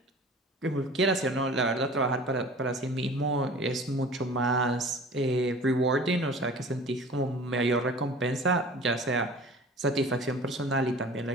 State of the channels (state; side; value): normal; both; correlation 0.43